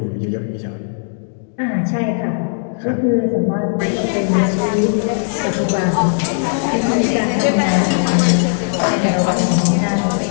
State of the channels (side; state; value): right; silent; digital silence